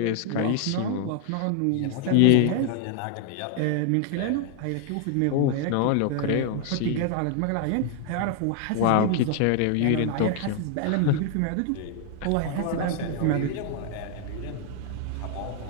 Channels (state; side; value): different; both; correlation 0.00